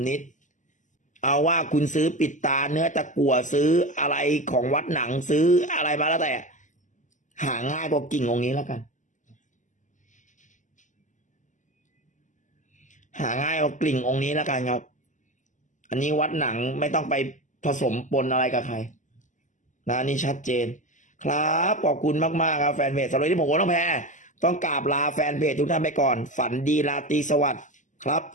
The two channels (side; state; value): right; late; 0.37 ms